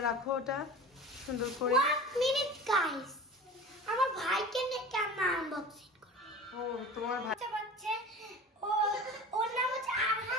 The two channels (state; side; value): normal; both; correlation 0.36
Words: রাখো ওটা সুন্দর করে। 1 মিনিট গাইস, আমার ভাইকে নিয়ে আমরা আনবক্সিং করব। ও তোমার ভাই আচ্ছা বাচ্চা, ও ওর নাম হচ্ছে